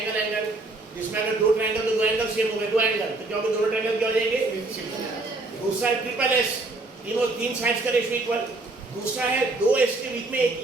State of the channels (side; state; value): left; quieter; 3.0 dB